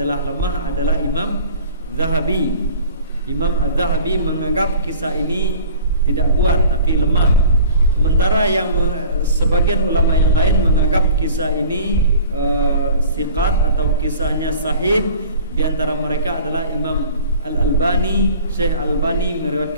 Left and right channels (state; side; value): inverted; both; correlation -0.45